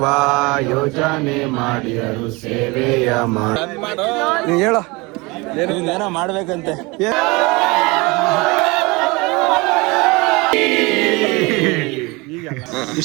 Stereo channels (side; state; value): left; quieter; 25.2 dB